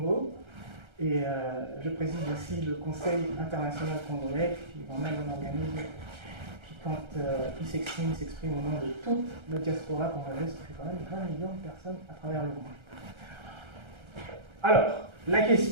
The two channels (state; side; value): late; left; 1.3 ms